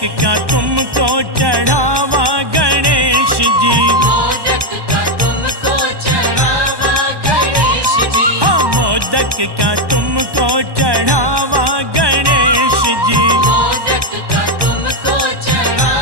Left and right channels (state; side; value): late; left; 1.1 ms